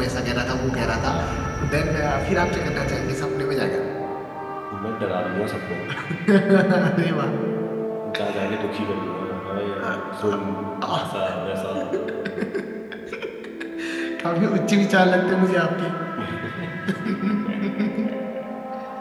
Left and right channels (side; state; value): both; identical; correlation 1.00